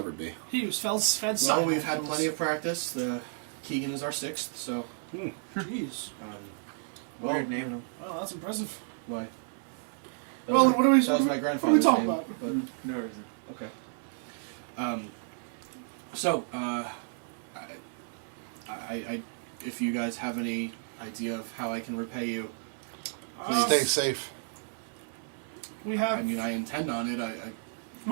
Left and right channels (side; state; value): left; silent; 57 dB below the other